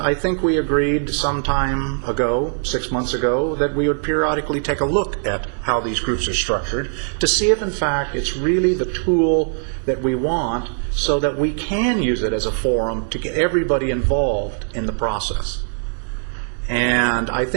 think we agreed some time ago, 6 months ago, that we would periodically take a look at how these groups are structured to see if in fact it's really the tool that we want so that we can use it as a forum to get everybody involved in the process. And I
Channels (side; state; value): left; silent; 65 dB below the other